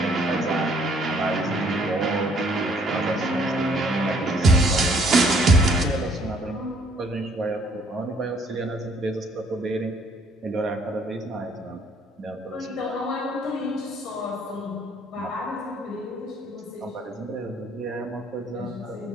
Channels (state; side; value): normal; both; correlation 0.63